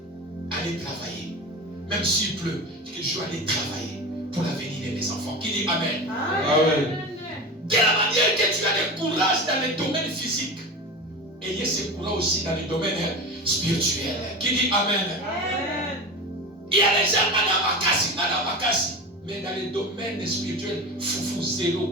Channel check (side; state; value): both; normal; correlation 0.28